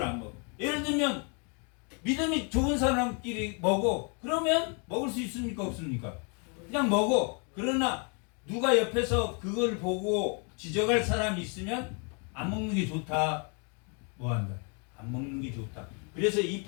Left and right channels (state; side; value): quieter; right; 36.9 dB